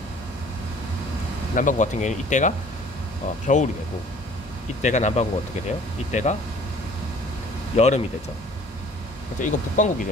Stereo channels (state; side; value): normal; both; correlation 0.52